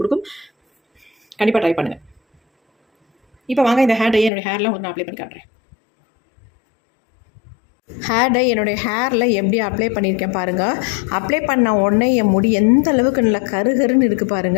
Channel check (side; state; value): right; drops out; at 4.3 s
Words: கொடுக்கும். கண்டிப்பாக ட்ரை பண்ணுங்கள். இப்போ வாங்க இந்த ஹேர் டையை என்னுடைய ஹேரில் உங்களுக்கு நான் அப்ளை பண்ணி காட்டுறேன். ஹேர் டை என்னுடைய ஹேரில் எப்படி அப்ளை பண்ணியிருக்கேன் பாருங்கள். அப்ளை பண்ண உடனே என் முடி எந்த அளவுக்கு நல்லா கருகருன்னு இருக்குது